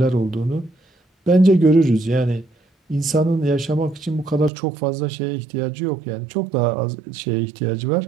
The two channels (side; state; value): left; drops out; at 4.5 s